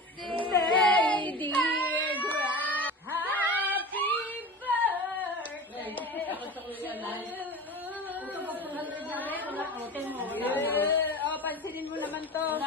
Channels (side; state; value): both; normal; correlation 0.32